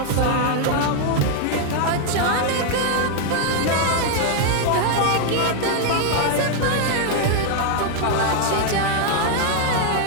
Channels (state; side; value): different; both; correlation 0.00